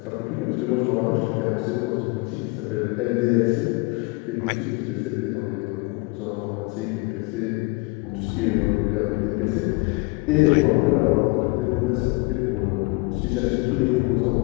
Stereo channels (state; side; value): quieter; right; 27.3 dB